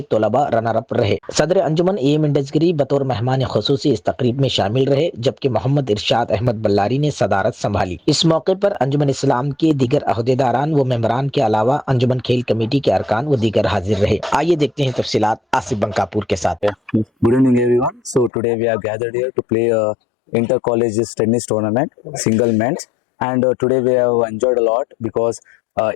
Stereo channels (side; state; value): right; drops out; at 18.3 s